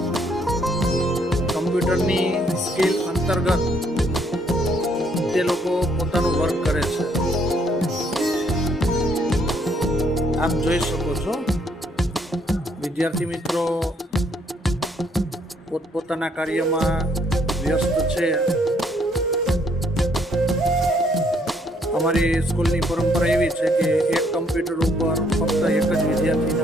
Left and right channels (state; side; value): normal; both; correlation 0.68